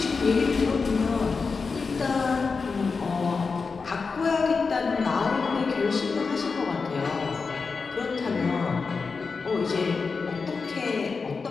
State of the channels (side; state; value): right; quieter; 4.7 dB